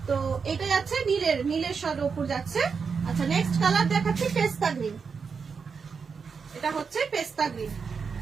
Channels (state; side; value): quieter; left; 5.7 dB